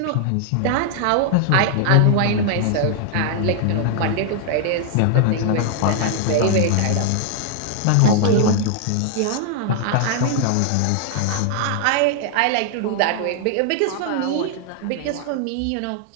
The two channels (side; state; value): both; different; correlation 0.00